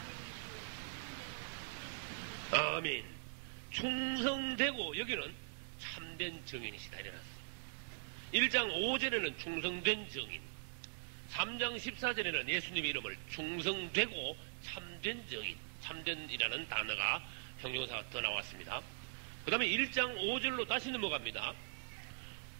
아멘. 충성되고 여기는 참된 정인이시다 이래놨어요. 1장 5절에는 충성된 정인, 3장 14절에는 예수님의 이름을 충성되고 참된 정인, 참된이라는 단어가 형용사가 더 나왔습니다. 그 다음에 1장 5절로 다시 넘어갑니다.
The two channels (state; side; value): silent; left; digital silence